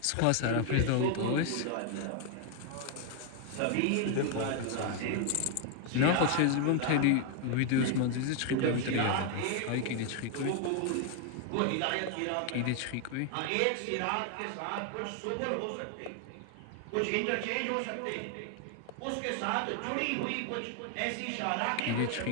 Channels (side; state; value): both; different; correlation 0.01